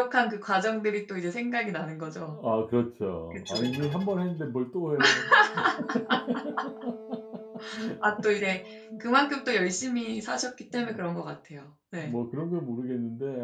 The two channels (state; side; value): identical; both; correlation 1.00